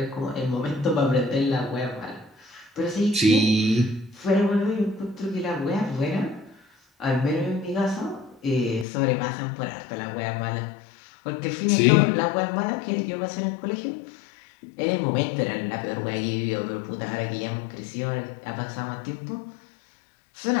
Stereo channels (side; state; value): right; drops out; at 8.8 s